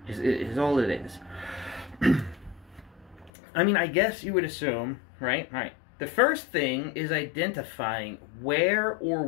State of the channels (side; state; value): right; drops out; at 3.3 s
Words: Is all it is. I mean, I guess you would assume, right? The first thing is identifying where or